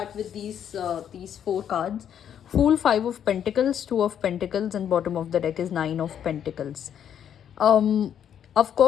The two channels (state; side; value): quieter; right; 9.2 dB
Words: with these four cards. Fool, Five of Pentacles, Two of Pentacles, and bottom of the deck is Nine of Pentacles. Of